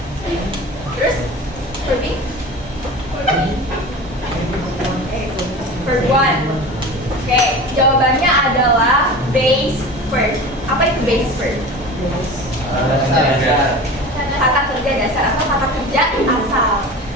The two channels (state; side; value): normal; both; correlation 0.34